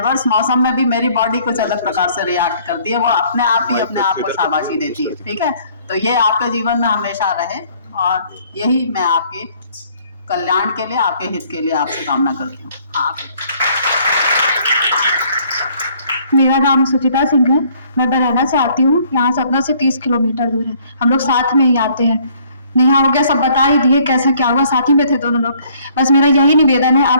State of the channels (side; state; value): both; inverted; correlation -0.61